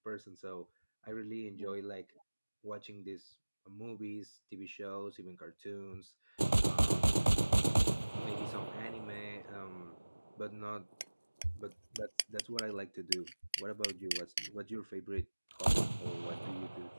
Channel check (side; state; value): both; inverted; correlation -1.00